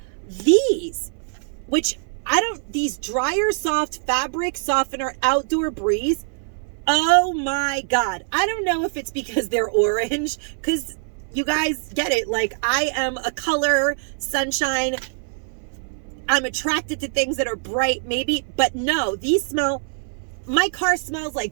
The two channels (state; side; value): silent; left; 63 dB below the other